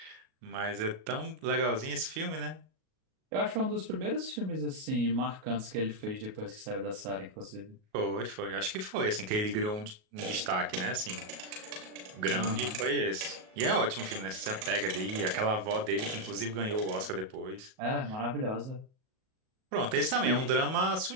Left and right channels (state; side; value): late; left; 38 ms